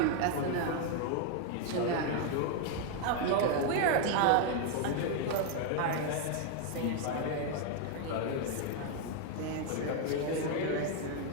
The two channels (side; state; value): both; different; correlation 0.01